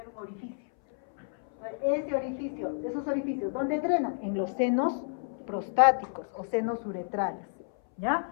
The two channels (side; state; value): right; silent; 58 dB below the other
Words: un orificio, Ese orificio, esos orificios, ¿dónde drenan? En los senos prostáticos o senos uretrales,